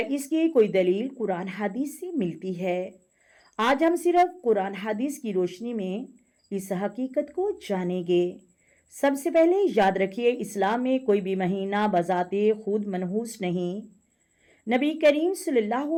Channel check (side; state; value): both; identical; correlation 1.00